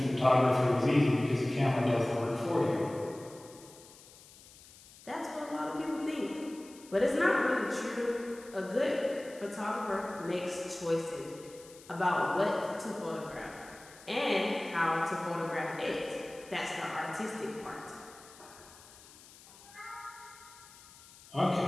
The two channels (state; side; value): noise; left; hiss, 21 dB below the sound